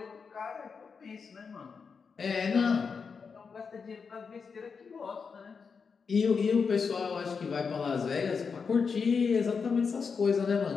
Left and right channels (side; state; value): right; quieter; 5.6 dB